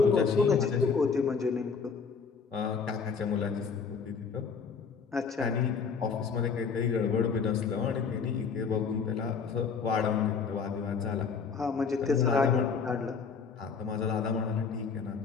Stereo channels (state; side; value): quieter; right; 5.6 dB